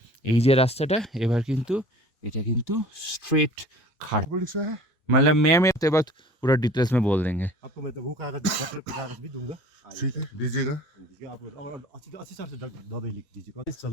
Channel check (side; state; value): both; normal; correlation 0.44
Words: এই যে রাস্তাটা, এবার কিন্তু এটা কিন্তু स्ट्रेट खाट। पुलिस है मतलब मैं तो बात पूरा डिटेल्स में बोल देंगे। आपको मैं तो वो कागज पत्र का कागज भी दूंगा। ठीक है दीजिएगा। दीजिए आप, और अच्छी तरह से दवाई लिख दीजिए, चल